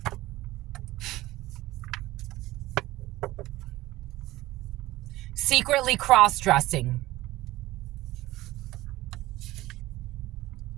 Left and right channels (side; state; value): left; quieter; 17.4 dB